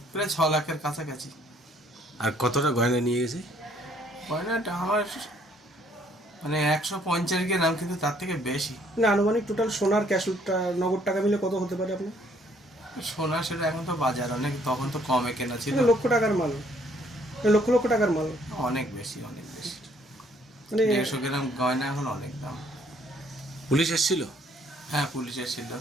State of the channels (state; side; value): normal; both; correlation 0.64